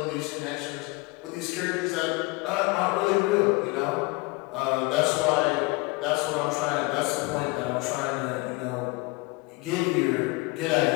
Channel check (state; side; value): quieter; right; 24.9 dB